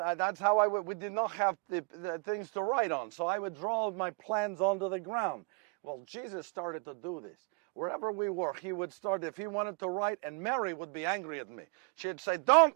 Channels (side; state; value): left; quieter; 35.0 dB